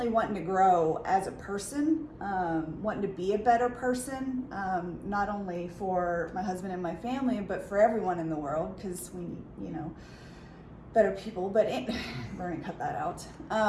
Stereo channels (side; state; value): both; identical; correlation 1.00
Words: wanting to grow as a person, wanting to be a better person, not only for my husband and my family, but for everyone in the world, because we need, better people, but we're gonna cut that out.